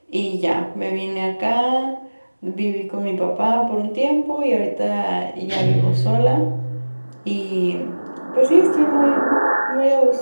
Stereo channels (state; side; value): inverted; both; correlation -1.00